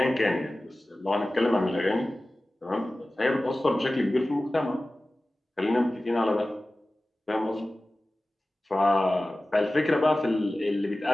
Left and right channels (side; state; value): both; normal; correlation 0.96